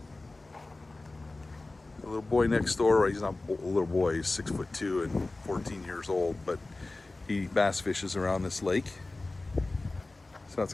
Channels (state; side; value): quieter; right; 3.1 dB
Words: little boy next door, well, he's not a little boy, he's 6'2" and 14 years old, but he bass fishes around this lake. So that's